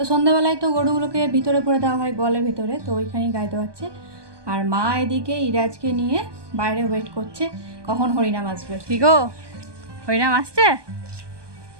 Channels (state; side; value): late; left; 1.2 ms